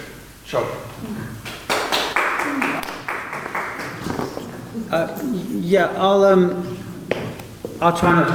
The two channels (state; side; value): identical; both; correlation 1.00